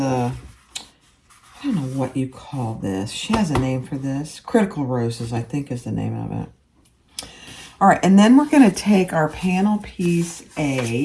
I don't know what you call this. She has a name for this. Critical roses, I think, is the name of it. All right, and then we're going to take our panel piece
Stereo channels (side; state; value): both; identical; correlation 1.00